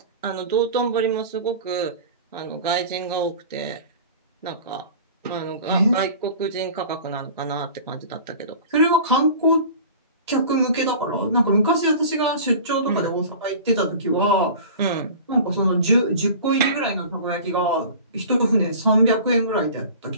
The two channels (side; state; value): both; inverted; correlation -0.40